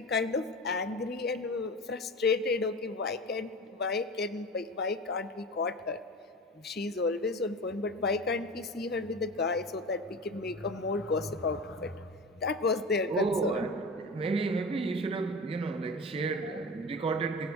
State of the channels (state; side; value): normal; both; correlation 0.30